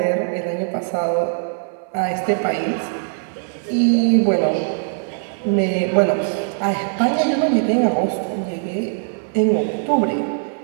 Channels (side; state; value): left; silent; 61 dB below the other